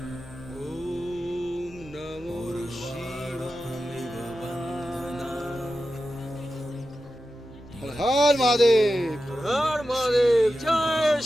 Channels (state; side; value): normal; both; correlation 0.92